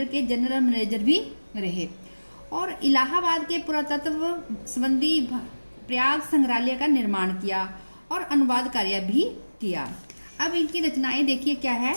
के जनरल मैनेजर भी रहे और इलाहाबाद के पुरातत्व संबंधी प्रयाग संग्रहालय का निर्माण किया और अनुवाद कार्य भी किया। अब इनकी रचनाएं देखिए क्या है।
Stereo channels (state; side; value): inverted; both; correlation -1.00